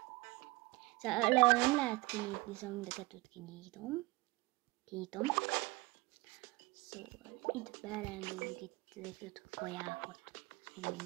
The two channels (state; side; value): quieter; left; 22.0 dB